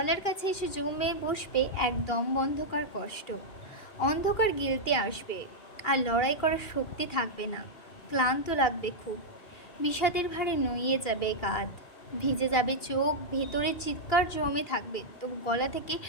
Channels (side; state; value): right; late; 2.3 ms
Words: কাছে এসে জমে বসবে এক দম বন্ধকার কষ্ট। অন্ধকার গিলতে আসবে, আর লড়াই করার শক্তি থাকবে না। ক্লান্ত লাগবে খুব। বিষাদের ভারে নুইয়ে যাবে কাঁধ, ভিজে যাবে চোখ, ভেতরে চিৎকার জমে থাকবে, তবু গলা থেকে